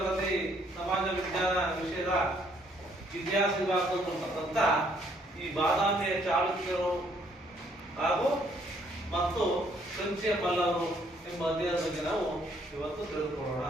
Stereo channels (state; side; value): normal; both; correlation 0.66